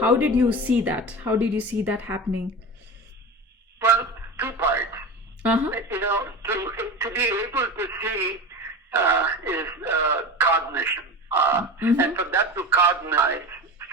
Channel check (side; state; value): both; normal; correlation 0.29